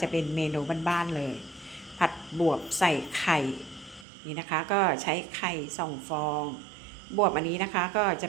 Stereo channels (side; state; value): left; drops out; at 4.0 s